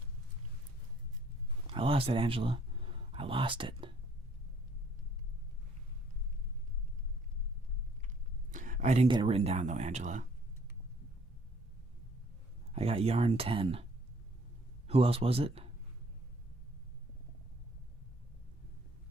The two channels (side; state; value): both; normal; correlation 0.61